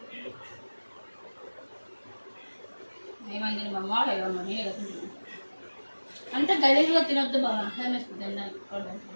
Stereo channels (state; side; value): inverted; both; correlation -1.00